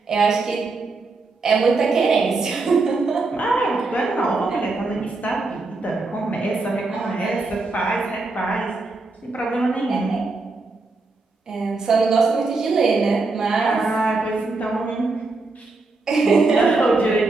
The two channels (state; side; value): quieter; left; 3.6 dB